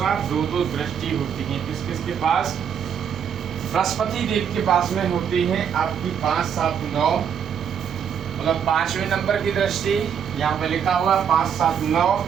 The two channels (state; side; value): quieter; left; 8.0 dB